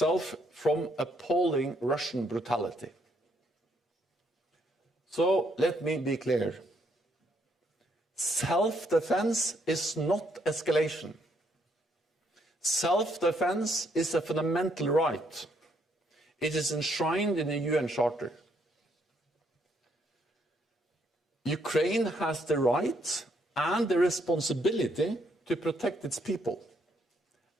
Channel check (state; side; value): normal; both; correlation 0.72